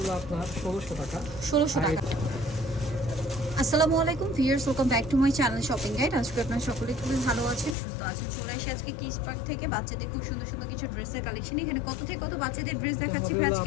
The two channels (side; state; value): right; drops out; at 7.8 s